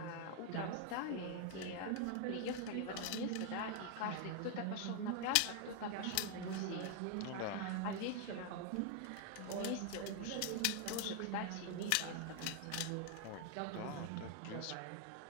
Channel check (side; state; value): both; different; correlation 0.00